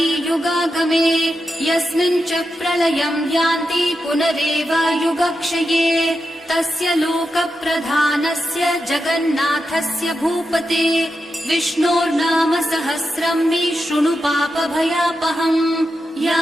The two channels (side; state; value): both; normal; correlation 0.88